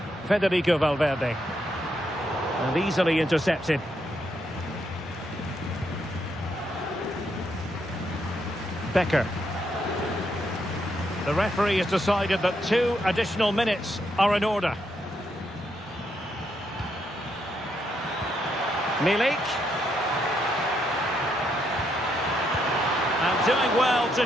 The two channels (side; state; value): both; normal; correlation 0.78